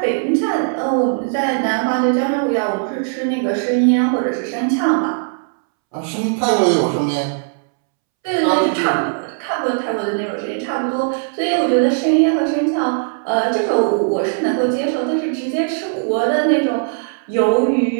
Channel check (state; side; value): silent; left; 67 dB below the other